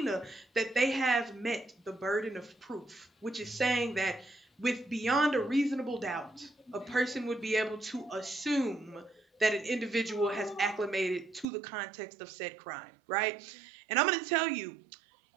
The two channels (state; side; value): drops out; left; at 11.5 s